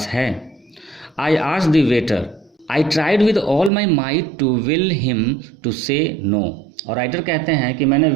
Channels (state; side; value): drops out; left; at 3.7 s